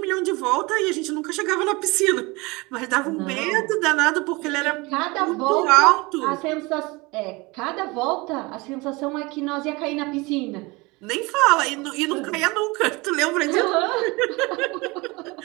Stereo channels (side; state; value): left; quieter; 24.7 dB